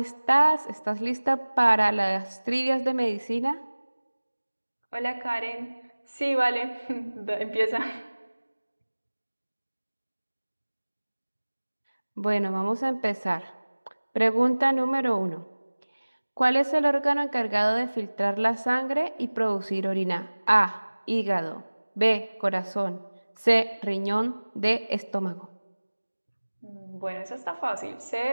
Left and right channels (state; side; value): inverted; both; correlation -1.00